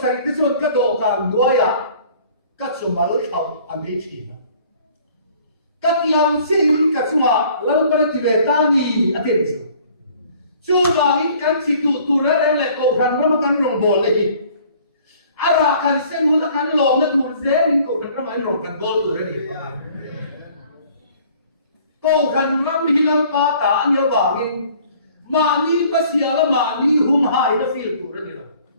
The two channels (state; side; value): inverted; both; correlation -0.55